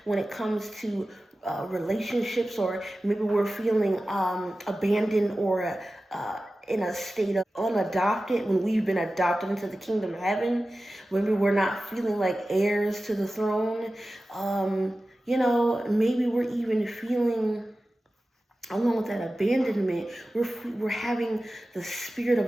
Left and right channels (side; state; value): both; normal; correlation 0.95